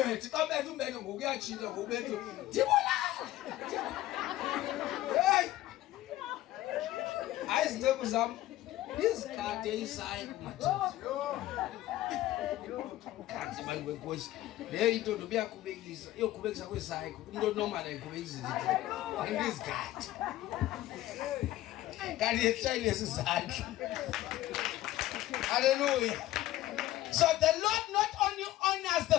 xa bethu umbetho ngokuyajika ngobetho ndibulala. Hey, ayizinceko zam izikade isayi kumadoda kanti bantu wenkosi le into nobuyaqhubekisa iyoqhubekisa kwesayi umuntu onormal ayiqhubekisa izikade kanti yeshayile isizandla. Hallelujah. So the Lord not only honors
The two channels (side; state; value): right; quieter; 15.1 dB